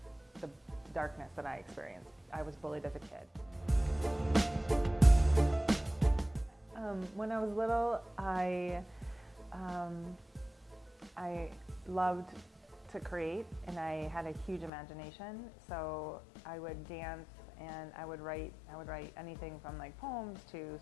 the darkness that I experienced. I was bullied as a kid. When I was little, I loved to create, and I had a huge imagination. So I would dance and I would write anything from like poems to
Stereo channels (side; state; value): right; drops out; at 14.7 s